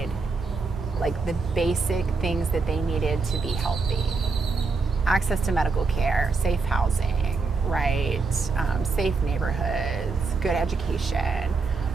like the basic things that they needed to be healthy. Access to medical care, safe housing, right? Safe neighborhoods, good education,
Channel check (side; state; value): left; quieter; 4.3 dB